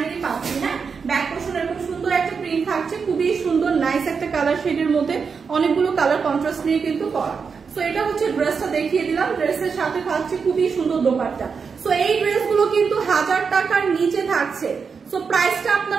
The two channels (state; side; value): quieter; left; 5.6 dB